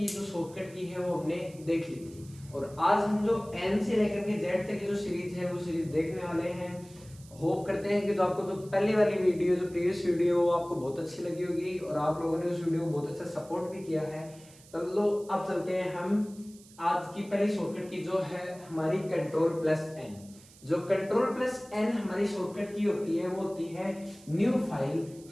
जो शॉर्टकट की है वो हमने देख ली थी। और आज हम जो एन से लेकर के जेड तक की जो सीरीज है वो सीरीज देखने वाले हैं। होप करते हैं कि जो आपको जो पहले वाली वीडियो जो प्रीवियस वीडियो वो आपको बहुत अच्छी लगी होगी और आप लोगों ने उस वीडियो को बहुत अच्छा सपोर्ट भी किया है। चलो अब चलते हैं हम आज की पहली शॉर्टकट की जो है हमारी कंट्रोल प्लस एन। जो कंट्रोल प्लस एन हमारी शॉर्टकट की होती है वो होती है न्यू फाइल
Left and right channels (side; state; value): right; noise; hiss, 23 dB below the sound